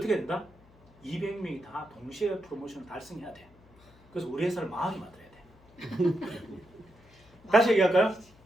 된다? 200명이 다 동시에 프로모션을 달성해야 돼. 그래서 우리 회사를 망하게 만들어야 돼. 다시 얘기할까요?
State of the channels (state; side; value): noise; left; hum, 27 dB below the sound